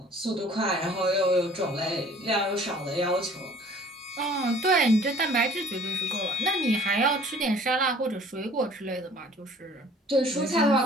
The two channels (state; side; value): normal; both; correlation 0.52